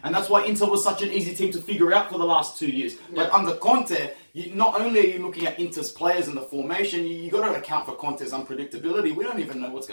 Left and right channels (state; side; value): inverted; both; correlation -1.00